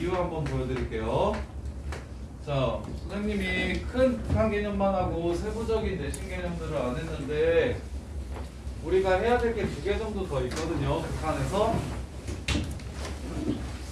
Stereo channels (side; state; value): both; identical; correlation 1.00